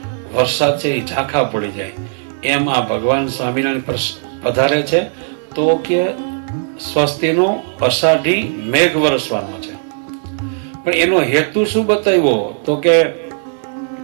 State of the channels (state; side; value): silent; left; digital silence